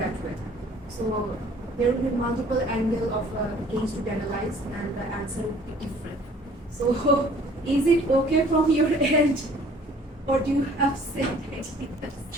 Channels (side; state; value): both; normal; correlation 0.54